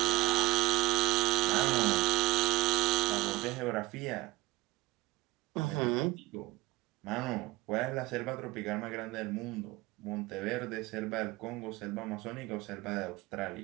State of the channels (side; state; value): left; quieter; 19.2 dB